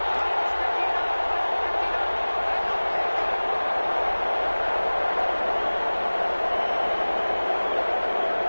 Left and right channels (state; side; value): inverted; both; correlation -1.00